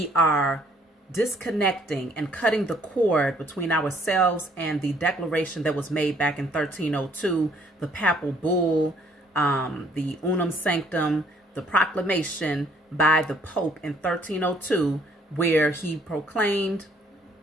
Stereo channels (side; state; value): both; normal; correlation 0.63